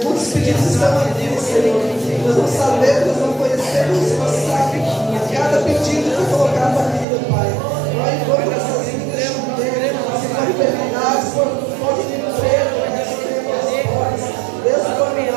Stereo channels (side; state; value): left; drops out; at 7.1 s